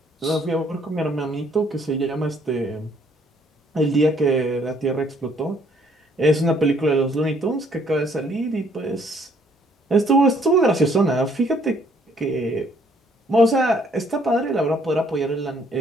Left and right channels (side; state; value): both; normal; correlation 0.64